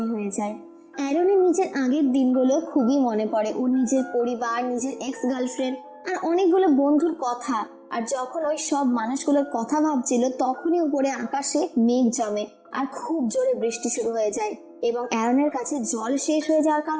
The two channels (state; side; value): identical; both; correlation 1.00